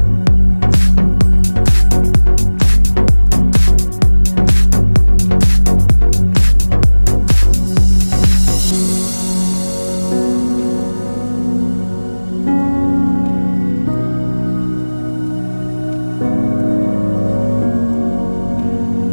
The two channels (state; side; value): inverted; both; correlation -1.00